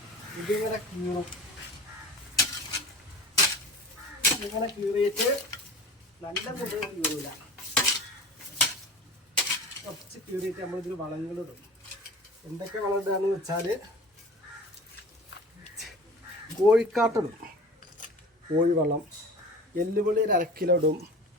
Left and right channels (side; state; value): both; normal; correlation 0.38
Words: ഇതിങ്ങനെ കീറും. ഇങ്ങനെ കീറിയിട്ട് നല്ല മുള്ള് കീറില്ല, കുറച്ച് കീറിയിട്ട് നമ്മളിതിൽ വളങ്ങളിടും. എന്തൊക്കെ വളം ഇടുകയെന്ന് വെച്ചാൽ കോഴിക്കാട്ടിടും, കോഴിവളം, എല്ലുപൊളി ഒരു 1 കിലോ ഇടും,